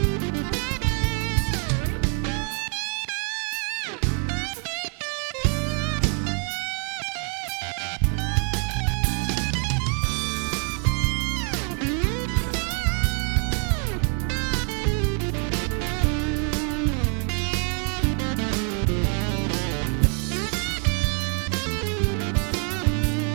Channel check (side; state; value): left; quieter; 39.4 dB